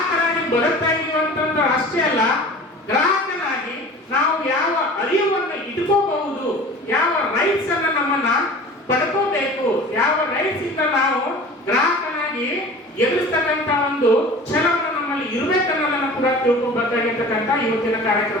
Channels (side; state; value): both; normal; correlation 0.41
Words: ಬದುಕ್ತಾ ಇದೀವಿ ಅಂತಂದ್ರೆ ಅಷ್ಟೇ ಅಲ್ಲ, ಗ್ರಾಹಕನಾಗಿ ನಾವು ಯಾವ ಅರಿವನ್ನು ಇಟ್ಕೋಬಹುದು, ಯಾವ ರೈಟ್ಸ್ ಅನ್ನ ನಮ್ಮನ್ನ ಪಡ್ಕೋಬೇಕು, ಯಾವ ರೈಟ್ಸ್ ಇಂದ ನಾವು ಗ್ರಾಹಕನಾಗಿ ಎದುರಿಸ್ತಕ್ಕಂತ ಒಂದು ಛಲವನ್ನು ನಮ್ಮಲ್ಲಿ ಇರಬೇಕನ್ನೋದನ್ನು ಕೂಡ ತಿಳ್ಕೊಬೇಕಾಗಿರ್ತಕ್ಕಂಥ ಇವತ್ತಿನ